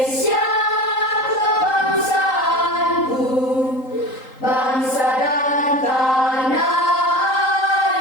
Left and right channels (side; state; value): right; late; 3.8 ms